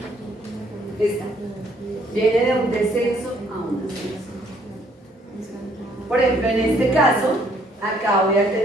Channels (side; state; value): both; normal; correlation 0.65